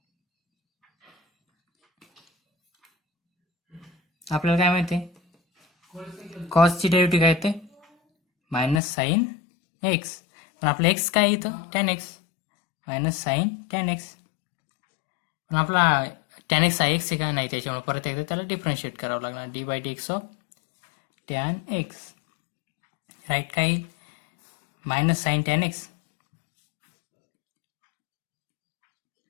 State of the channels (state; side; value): drops out; right; at 8.8 s